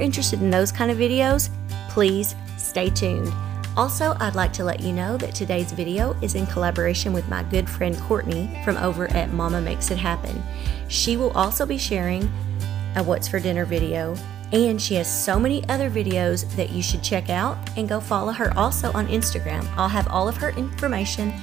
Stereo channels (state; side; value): quieter; left; 10.7 dB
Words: in those kind of videos, please stay tuned. Also, I'd like to let you know that today's video is in collaboration with my good friend Courtney from over at Mama Makes It Happen. She will also be sharing a What's for Dinner video, and she has so many other videos that you should check out, and go follow her also on Instagram. I'll have all of her information